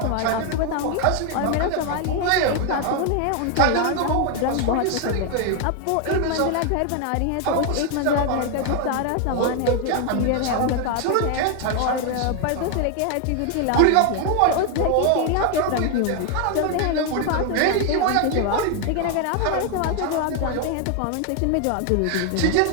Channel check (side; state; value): both; different; correlation 0.01